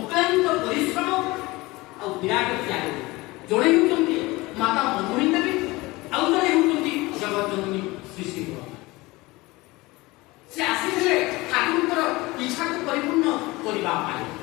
পরিশ্রম ଆଉ ବିରାଟ ତ୍ୟାଗ। ଜଣେ ହେଉଛନ୍ତି ମାତା ମଧୁମୟୀ ଦେବୀ, ଆଉ ଜଣେ ହେଉଛନ୍ତି ଜଗତଜନନୀ ଶ୍ରୀ ଶ୍ରୀ ବଡ଼। ସେ ଆସିଥିଲେ ଠାକୁରଙ୍କର ଇଚ୍ଛାକୁ ପରିପୂର୍ଣ୍ଣ କରିବା ପାଇଁ।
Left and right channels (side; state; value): right; quieter; 21.6 dB